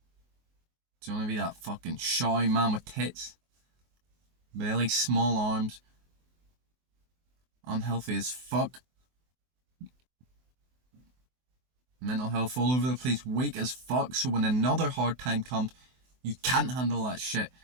Do you want to be that fucking shy man with tits? Belly, small arms, unhealthy as fuck, mental health all over the place, weak as fuck, so when another hard time comes, you can't handle that shit?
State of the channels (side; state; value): left; late; 24 ms